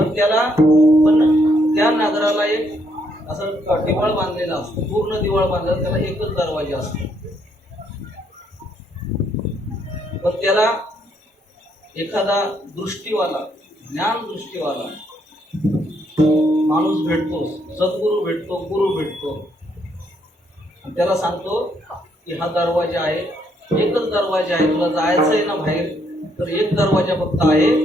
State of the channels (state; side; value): normal; both; correlation 0.72